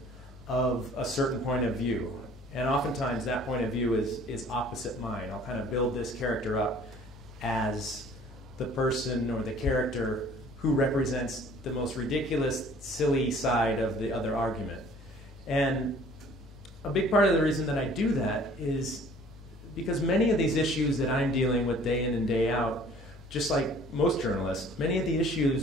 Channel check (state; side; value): normal; both; correlation 0.53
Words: of a certain point of view. And oftentimes that point of view is opposite mine. I'll kind of build this character up as the person or the character who represents the most ridiculous, silly side of the other argument. And a big part of the reason that I do that is because many of these issues that I'm dealing with day in and day out, just like most journalists, many of the